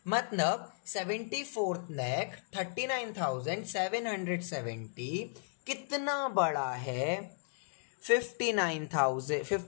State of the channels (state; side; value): silent; right; digital silence